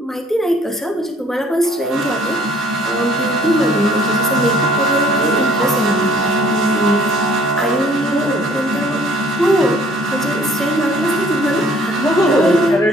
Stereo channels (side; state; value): both; normal; correlation 0.58